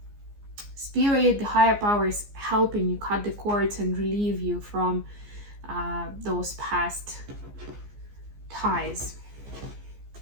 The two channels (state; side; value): late; left; 14 ms